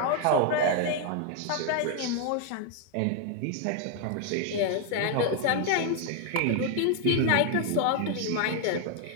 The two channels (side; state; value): both; different; correlation 0.00